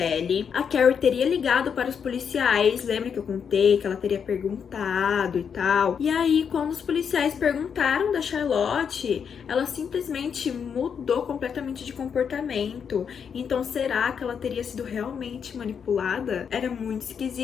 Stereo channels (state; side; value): quieter; right; 7.1 dB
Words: a Carrie teria ligado para os policiais. Lembra que eu contei que ela teria perguntado e tal? E aí, quando os policiais perguntaram da Charlotte, ela simplesmente mudou completamente de comportamento. Então, será que ela teria sido realmente manipulada? Era muito